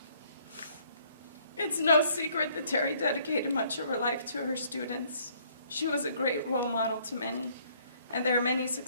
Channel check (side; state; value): both; inverted; correlation -0.63